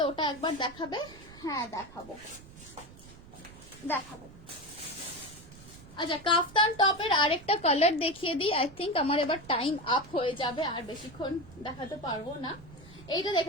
ওটা একবার দেখাবে? হ্যাঁ দেখাবো দেখাবো। আচ্ছা কাফতান টপের আরেকটা কালার দেখিয়ে দিই। আই থিঙ্ক আমার এবার টাইম আপ হয়ে যাবে, আর বেশিক্ষণ দেখাতে পারবো না। এইটা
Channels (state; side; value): noise; right; rumble, 19 dB below the sound